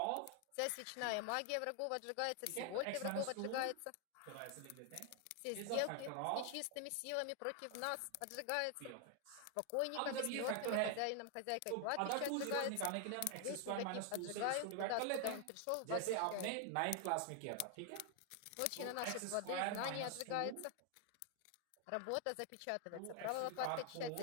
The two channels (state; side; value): different; both; correlation 0.00